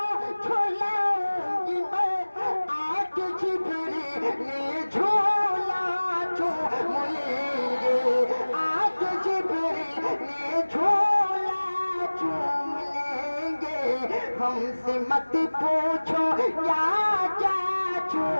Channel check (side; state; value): both; inverted; correlation -1.00